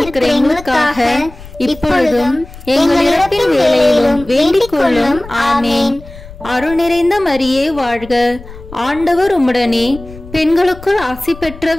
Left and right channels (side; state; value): left; noise; rumble, 17 dB below the sound